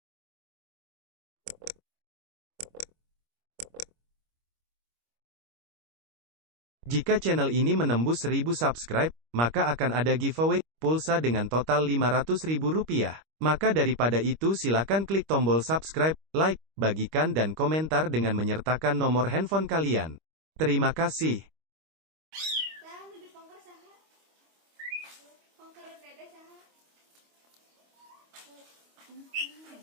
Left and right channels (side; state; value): left; late; 25 ms